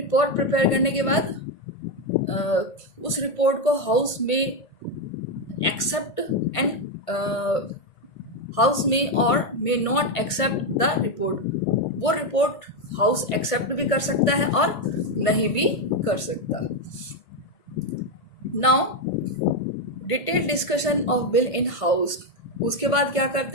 प्रिपेयर करने के बाद उस रिपोर्ट को हाउस में एक्सेप्ट एंड हाउस में और may not accept the report. वो रिपोर्ट हाउस एक्सेप्ट भी कर सकता है और नहीं भी कर सकता। Now detail discussion of bill in house. उसके बाद क्या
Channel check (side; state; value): right; late; 1.5 ms